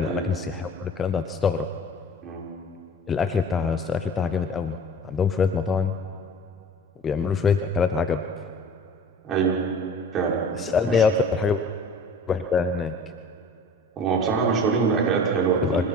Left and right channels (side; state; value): both; normal; correlation 0.41